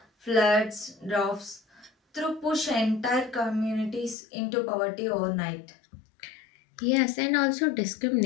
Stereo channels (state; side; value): drops out; right; at 4.2 s